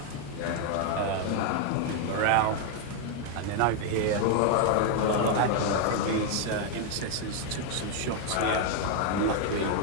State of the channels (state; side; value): different; both; correlation 0.01